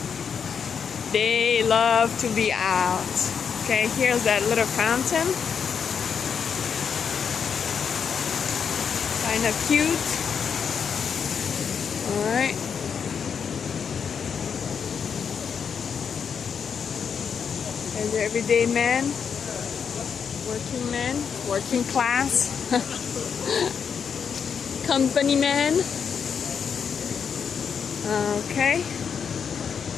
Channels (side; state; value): right; quieter; 6.8 dB